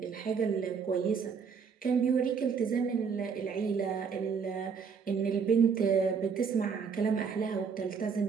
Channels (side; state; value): left; quieter; 6.1 dB